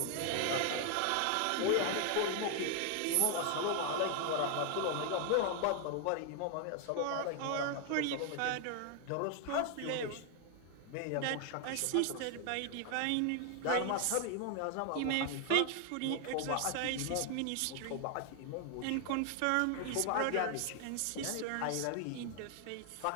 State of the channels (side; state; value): both; different; correlation 0.00